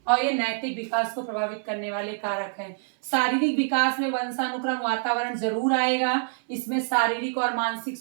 और ये नैतिक विकास को प्रभावित करने वाले कारक हैं। शारीरिक विकास में वंशानुक्रम वातावरण जरूर आएगा। इसमें शारीरिक और मानसिक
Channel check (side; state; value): left; silent; 61 dB below the other